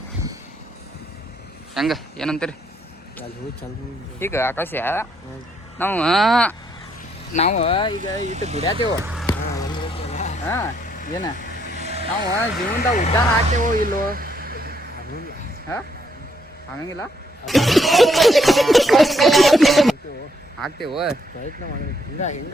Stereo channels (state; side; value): normal; both; correlation 0.73